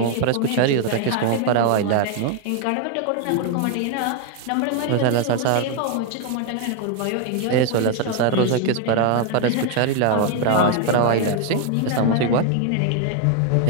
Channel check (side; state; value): both; different; correlation 0.00